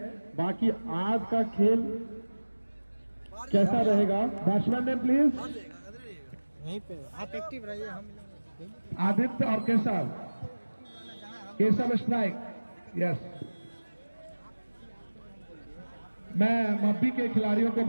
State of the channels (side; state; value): both; inverted; correlation -1.00